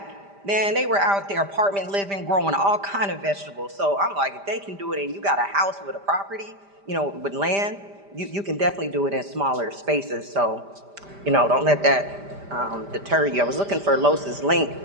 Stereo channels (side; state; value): left; late; 5.0 ms